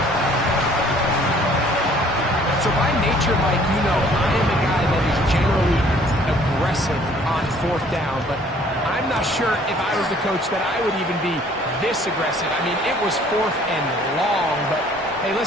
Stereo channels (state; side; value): normal; both; correlation 0.57